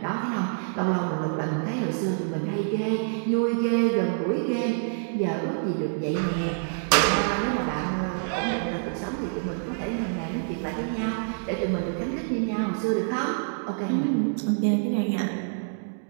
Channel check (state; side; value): silent; left; digital silence